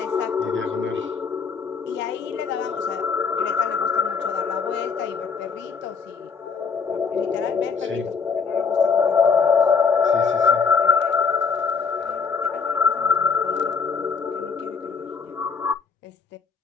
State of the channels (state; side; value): quieter; right; 5.6 dB